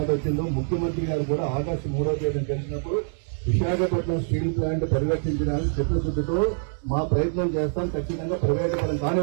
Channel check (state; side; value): silent; left; 62 dB below the other